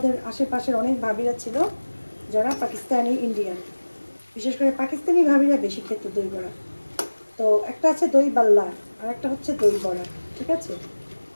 আশেপাশের অনেক ভাবিরা ছিল যারা পাকিস্তানি ইন্ডিয়ান, বিশেষ করে পাকিস্তানি ভাবিরা বেশি খেত দই বড়া। তো একটা আছে দই বাল্লা আর একটা হচ্ছে দই বড়া, ঠিক আছে,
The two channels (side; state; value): both; inverted; correlation -1.00